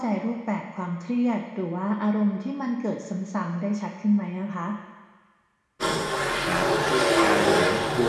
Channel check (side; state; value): both; identical; correlation 1.00